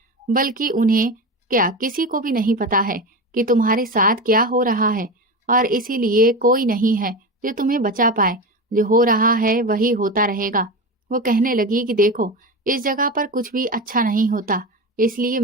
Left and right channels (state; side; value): normal; both; correlation 0.23